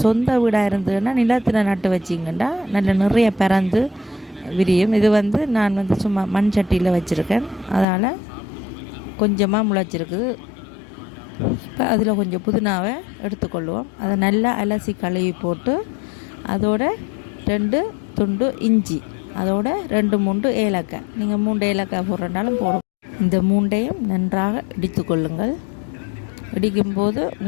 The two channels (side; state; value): right; drops out; at 7.9 s